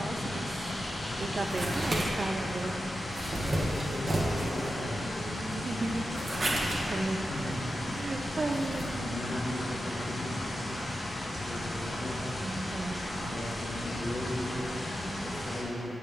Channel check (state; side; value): normal; both; correlation 0.90